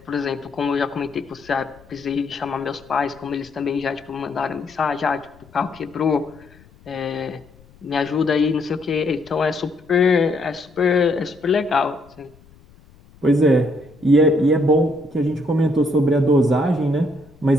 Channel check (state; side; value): noise; left; rumble, 26 dB below the sound